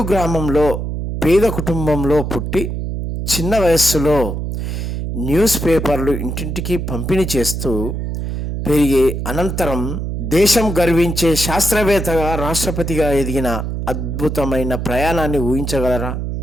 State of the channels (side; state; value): right; noise; hum, 4 dB below the sound